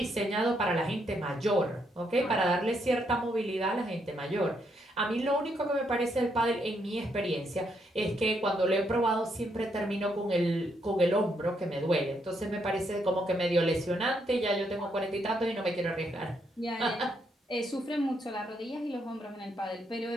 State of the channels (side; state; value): both; normal; correlation 0.76